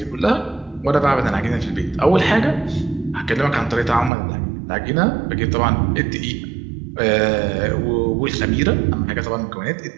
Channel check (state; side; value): drops out; left; at 4.1 s